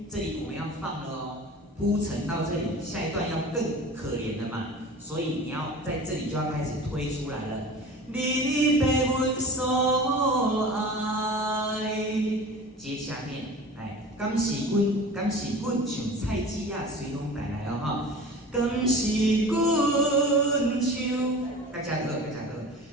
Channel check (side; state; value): both; normal; correlation 0.38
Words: 这里我们要放了哦，铺陈到这里，下一段要更可怜了嘛，所以你要在这里就要开始推出来了。你被阮所爱，接下面来，敢是阮像菜籽仔随风带来哦哈，敢是阮像，大家好，